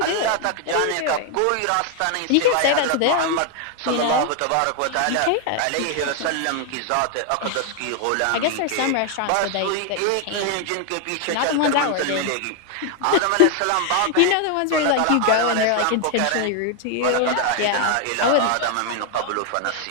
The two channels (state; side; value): different; both; correlation 0.00